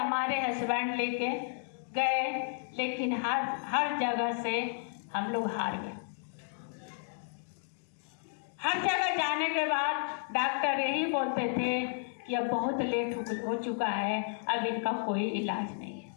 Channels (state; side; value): silent; right; digital silence